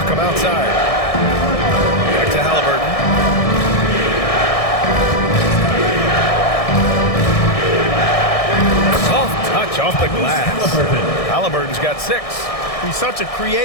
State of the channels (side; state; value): right; late; 1.6 ms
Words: outside. Back to Halliburton. Soft touch off the glass. Halliburton's got 6. He's such a